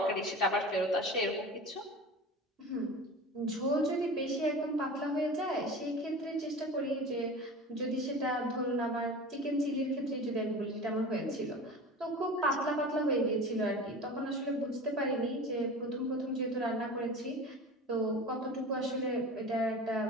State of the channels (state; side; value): normal; both; correlation 0.34